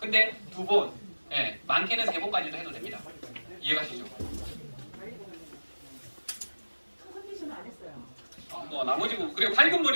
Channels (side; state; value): both; inverted; correlation -1.00